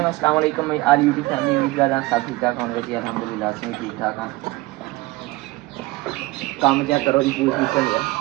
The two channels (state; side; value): quieter; left; 20.7 dB